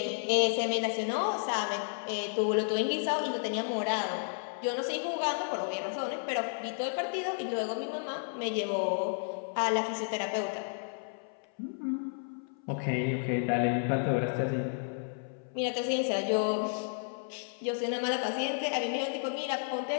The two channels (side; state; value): right; silent; 56 dB below the other